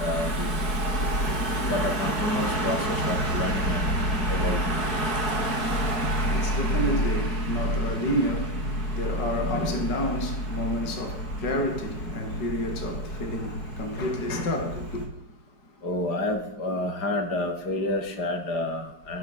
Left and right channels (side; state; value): right; late; 4.6 ms